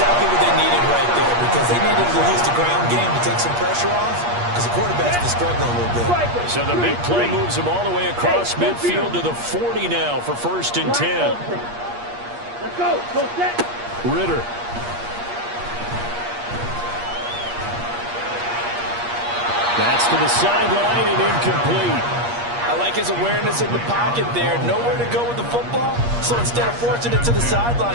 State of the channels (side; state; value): left; late; 8.4 ms